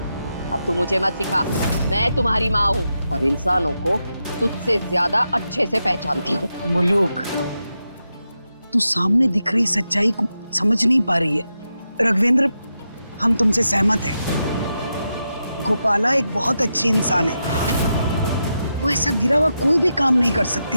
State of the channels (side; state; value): both; inverted; correlation -0.87